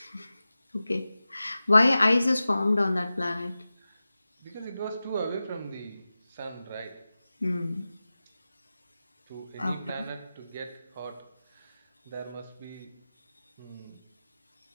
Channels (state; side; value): inverted; both; correlation -0.95